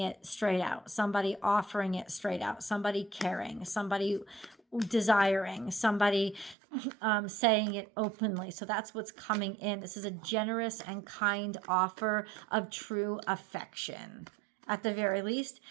straight out. Somebody offering it straight out. Somebody caring. Somebody desiring. Somebody saying it openly. So that's what's coming in. This is a generous and kind offer of true affection. At the very least,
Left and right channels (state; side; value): drops out; left; at 6.6 s